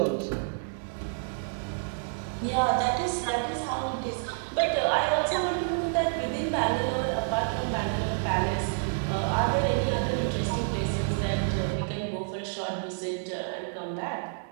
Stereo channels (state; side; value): silent; left; digital silence